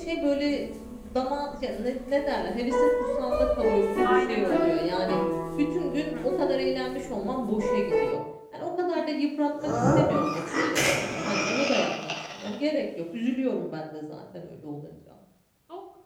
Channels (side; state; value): both; identical; correlation 1.00